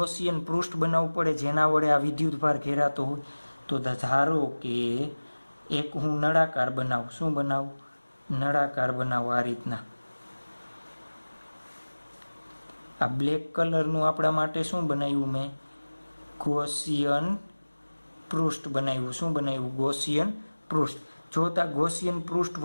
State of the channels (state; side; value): inverted; both; correlation -1.00